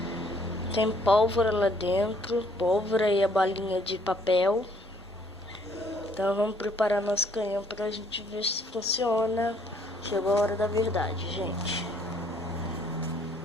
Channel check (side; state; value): both; normal; correlation 0.64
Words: Tem pólvora lá dentro, pólvora e a balinha de papel. Então vamos preparar nosso canhão pra gente ver se funciona. Chegou a hora da verdade, gente.